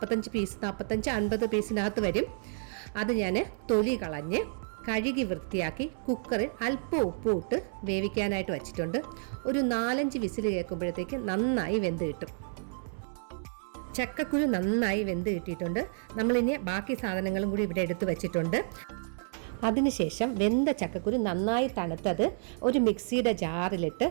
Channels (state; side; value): silent; left; 58 dB below the other